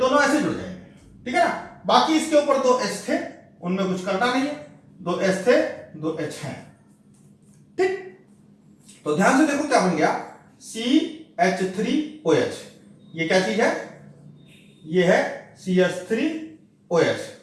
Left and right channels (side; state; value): both; identical; correlation 1.00